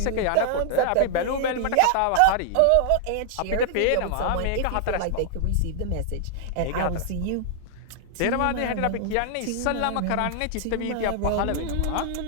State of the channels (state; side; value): different; both; correlation 0.00